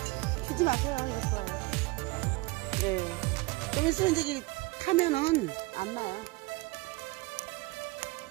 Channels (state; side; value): quieter; left; 23.0 dB